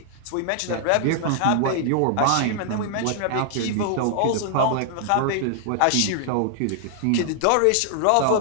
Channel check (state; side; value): different; both; correlation -0.01